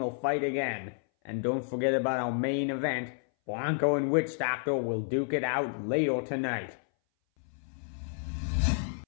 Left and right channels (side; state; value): right; silent; 57 dB below the other